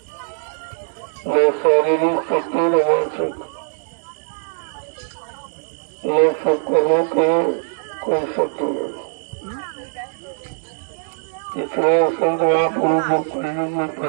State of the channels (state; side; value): silent; left; 64 dB below the other